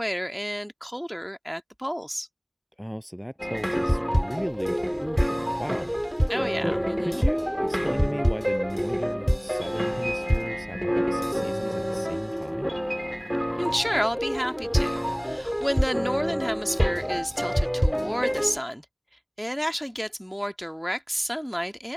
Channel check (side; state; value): both; identical; correlation 1.00